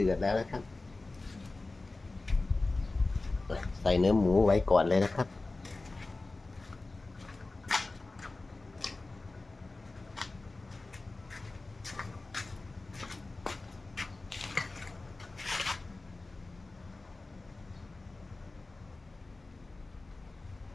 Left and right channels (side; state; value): right; quieter; 3.3 dB